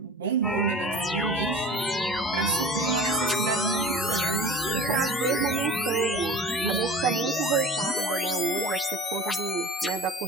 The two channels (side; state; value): both; normal; correlation 0.40